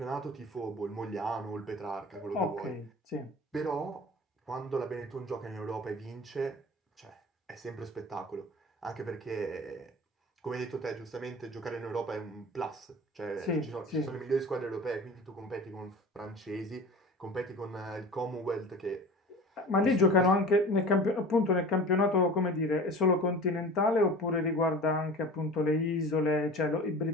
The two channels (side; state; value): both; normal; correlation 0.37